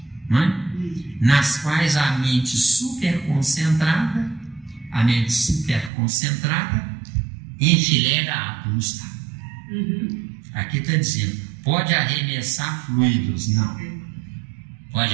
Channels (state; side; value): drops out; left; at 5.9 s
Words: não é? Nas quais a mente superconcentrada enfileira átomos. Tá? Aqui está dizendo, pode arremessar fluidos, não. Pode